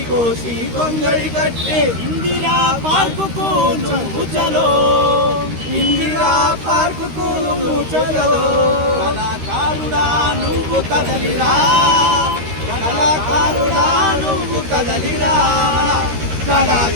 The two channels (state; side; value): late; left; 13 ms